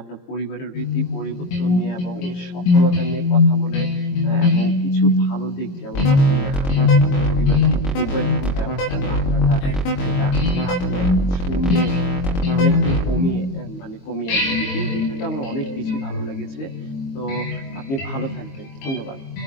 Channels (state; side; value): late; right; 22 ms